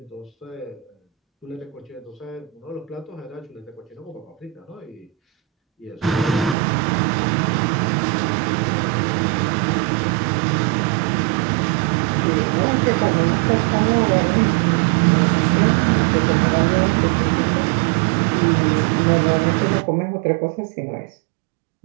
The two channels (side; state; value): left; drops out; at 6.6 s